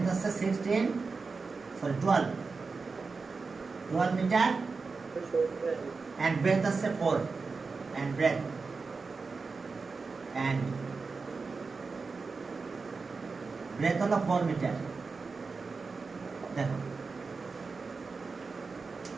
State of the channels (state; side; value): quieter; left; 4.4 dB